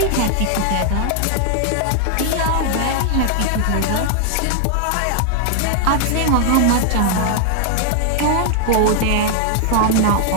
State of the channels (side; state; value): both; different; correlation 0.00